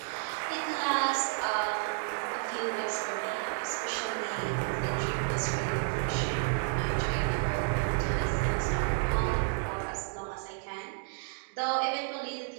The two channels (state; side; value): silent; left; digital silence